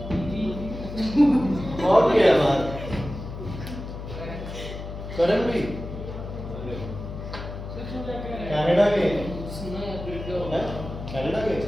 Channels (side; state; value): left; noise; hum, 9 dB below the sound